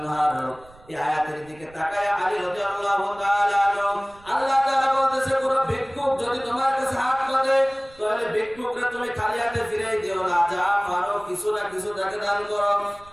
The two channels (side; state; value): right; noise; rumble, 24 dB below the sound